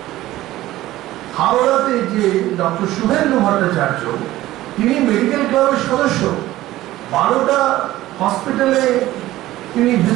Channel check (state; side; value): quieter; left; 15.8 dB